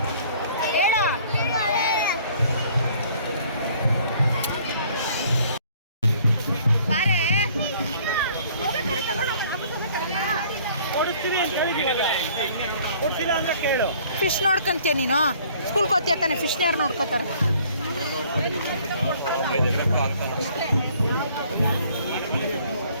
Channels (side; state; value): both; inverted; correlation -0.57